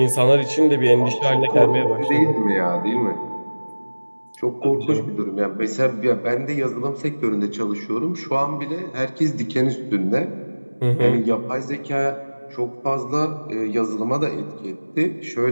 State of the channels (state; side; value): inverted; both; correlation -1.00